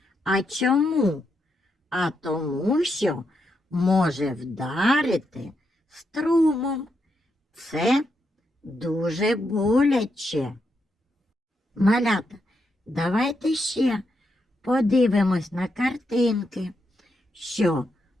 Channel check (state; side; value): normal; both; correlation 0.82